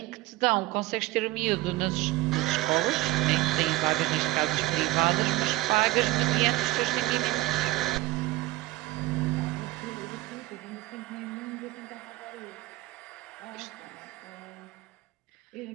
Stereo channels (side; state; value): left; quieter; 18.5 dB